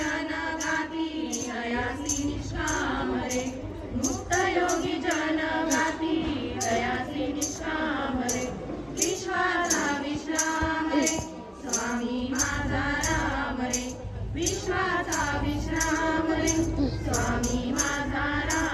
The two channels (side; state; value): both; identical; correlation 1.00